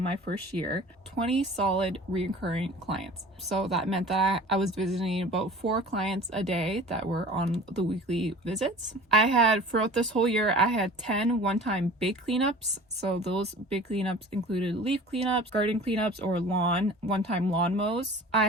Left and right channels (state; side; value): normal; both; correlation 0.42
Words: my first year, 20 solid recurring clients. So that meant that I was visiting about 4 clients a day that were on the weekly visits. I had, throughout this whole year, I had 10 one-time big cleanups. So those big cleanups included leaf cleanups, garden cleanups, or one-time lawn mows. I